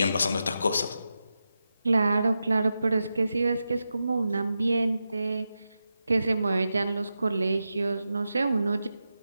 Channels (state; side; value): inverted; both; correlation -0.90